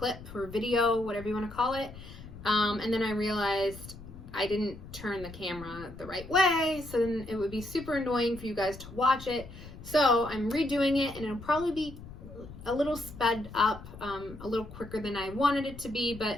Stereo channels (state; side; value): noise; left; rumble, 15 dB below the sound